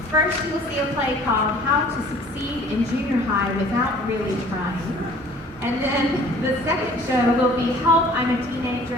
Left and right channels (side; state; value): both; normal; correlation 0.51